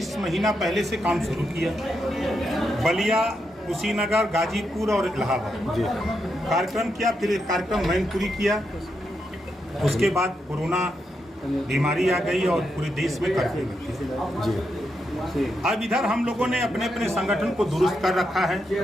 महीना पहले से काम शुरू किया। बलिया, कुशीनगर, गाजीपुर और इलाहाबाद कार्यक्रम किया। फिर एक कार्यक्रम मैनपुरी किया। उसके बाद कोरोना बीमारी आ गई और पूरे देश में कर्फ्यू लग गया। अब इधर हम लोगों ने अपने अपने संगठन को दुरुस्त कर रखा है,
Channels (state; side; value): normal; both; correlation 0.83